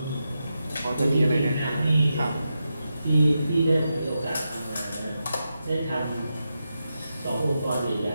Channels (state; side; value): inverted; both; correlation -0.88